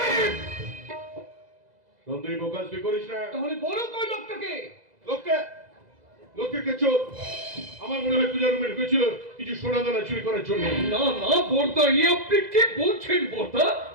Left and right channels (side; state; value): left; late; 2.0 ms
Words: সন্দীপ প্রকাশ তুই করিস না। তাহলে বলো কই লোকটাকে? লোককে চোর। আমার মনে হয় পূজার রুমে ঢুকেছিল কিছু সোনা দানা চুরি করার জন্য। না না বর্দা, এ আপনি কি বলছেন বর্দা?